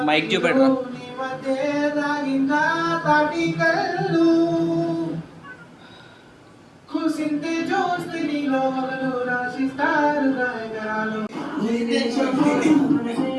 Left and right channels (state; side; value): identical; both; correlation 1.00